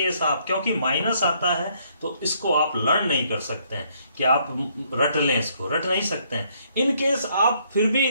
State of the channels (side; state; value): both; inverted; correlation -0.68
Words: आप, क्योंकि माइनस आता है तो इसको आप लर्न नहीं कर सकते हैं कि आप रट लें, इसको रट नहीं सकते हैं। इन केस आप फिर भी